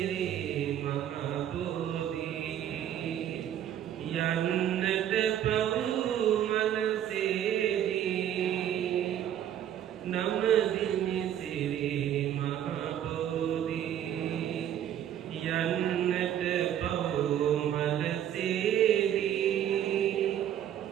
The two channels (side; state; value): left; quieter; 10.5 dB